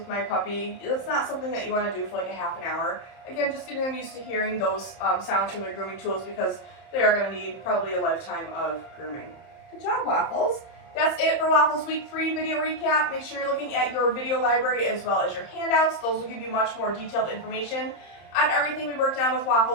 my puppy. That's not something that you want to do for a half an hour. Again, just getting them used to hearing those sounds from the grooming tools because they are going to need probably a lifetime of grooming. Good job, Waffles. That's it for Waffles Week 3 video recap. Make sure you're looking at your video library as well as your handouts. Those will give you much more detailed information on everything we worked on with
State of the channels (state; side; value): late; right; 31 ms